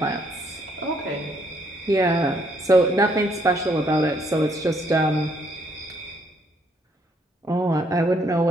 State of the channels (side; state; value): both; normal; correlation 0.70